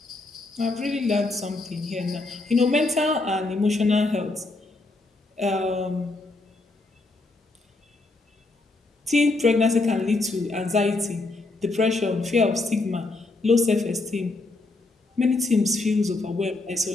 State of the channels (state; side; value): quieter; right; 3.2 dB